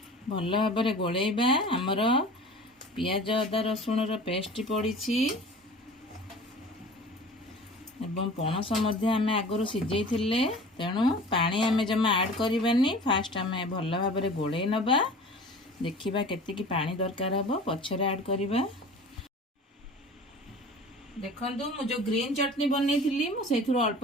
भल भाबरे गोळेबा। हमर पियाज अदा रसुण रो पेस्ट पड़ीछि एवं पणस मध्य आमे आगरो सिजेई थिले तेणु पानी आमे जमा ऐड करिबानी। फास्ट आमे भल भाबरे गोळेई नबा। देखिबा केते की पानी दरकार हबो पछरे ऐड करिबा। देखंतु मु जो ग्रीन चटनी बनै थिली मु सेथुर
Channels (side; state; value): both; normal; correlation 0.41